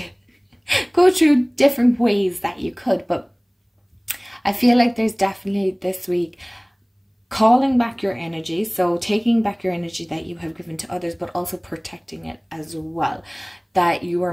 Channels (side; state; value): both; identical; correlation 1.00